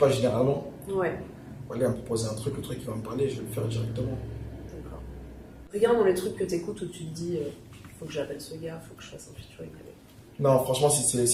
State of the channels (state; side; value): identical; both; correlation 1.00